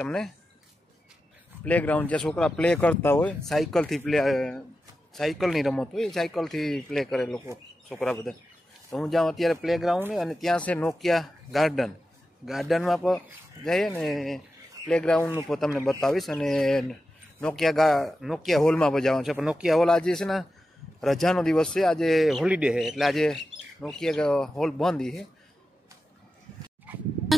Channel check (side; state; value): both; normal; correlation 0.92